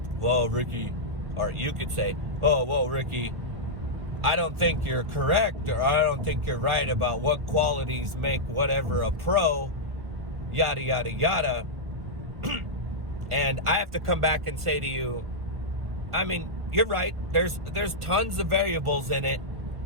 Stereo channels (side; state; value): left; late; 1.4 ms